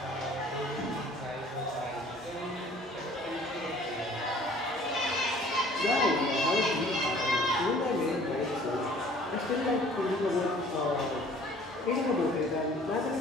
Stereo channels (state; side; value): normal; both; correlation 0.52